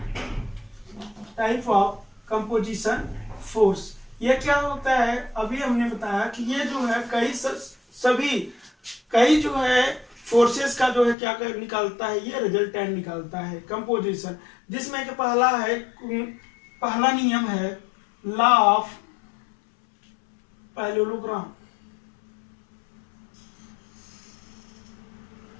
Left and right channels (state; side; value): drops out; right; at 11.2 s